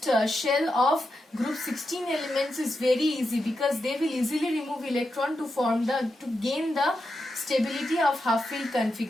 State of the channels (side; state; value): both; normal; correlation 0.87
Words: shell of group 16 elements is very easy, because they will easily remove electron to gain the stability of half-filled